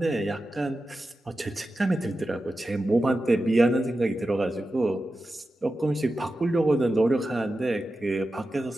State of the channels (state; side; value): normal; both; correlation 0.92